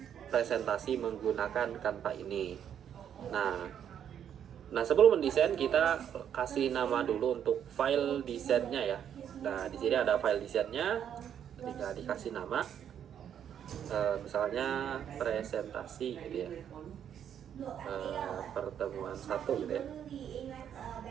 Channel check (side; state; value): left; quieter; 9.1 dB